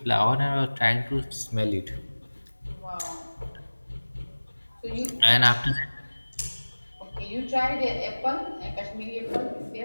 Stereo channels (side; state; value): both; inverted; correlation -1.00